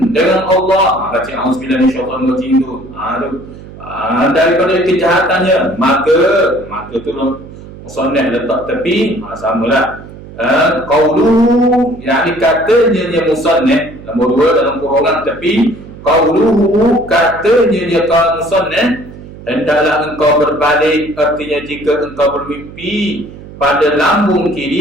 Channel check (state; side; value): noise; right; hum, 16 dB below the sound